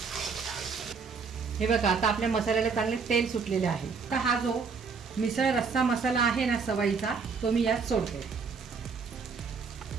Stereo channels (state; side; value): quieter; left; 5.3 dB